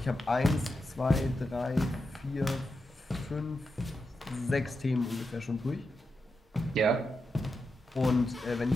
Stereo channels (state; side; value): normal; both; correlation 0.88